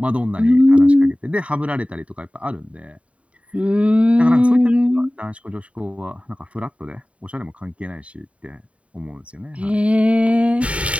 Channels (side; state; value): left; late; 0.064 ms